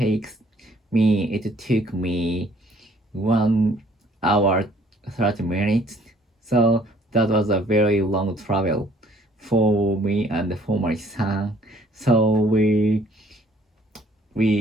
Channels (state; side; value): normal; both; correlation 0.60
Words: took me 1 hour 30 minutes. So that was a very long travel for me and for my son. So we